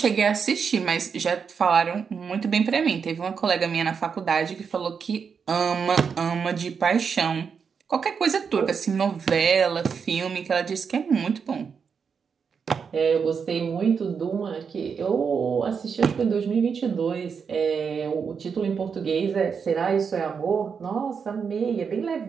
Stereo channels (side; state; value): left; quieter; 6.2 dB